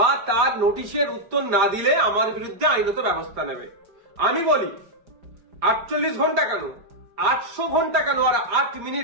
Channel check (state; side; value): late; left; 4.9 ms